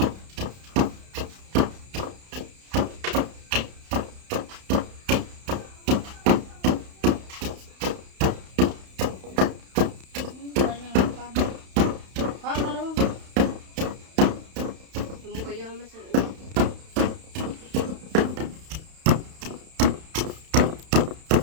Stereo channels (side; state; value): left; late; 31 ms